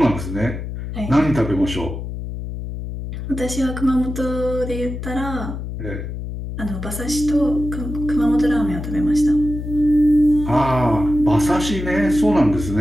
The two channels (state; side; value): noise; left; hum, 7 dB below the sound